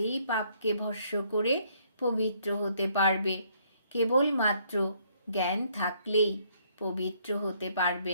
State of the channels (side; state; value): both; inverted; correlation -0.67